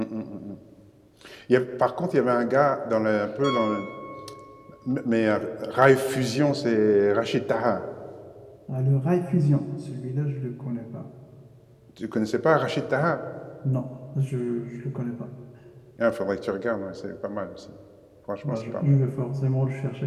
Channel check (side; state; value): both; identical; correlation 1.00